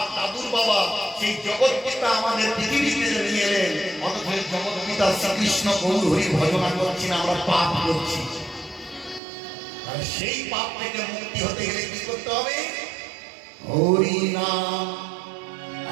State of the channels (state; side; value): drops out; left; at 9.2 s